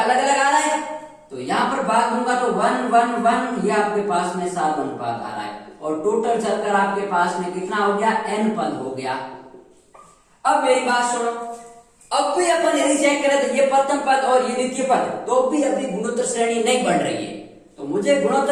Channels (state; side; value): identical; both; correlation 1.00